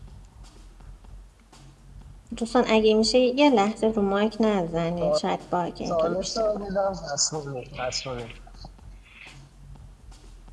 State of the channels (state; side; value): identical; both; correlation 1.00